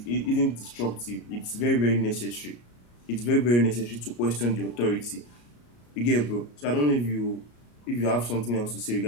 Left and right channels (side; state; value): right; late; 34 ms